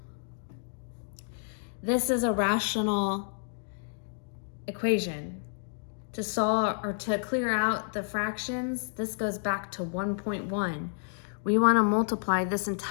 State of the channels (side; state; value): right; silent; digital silence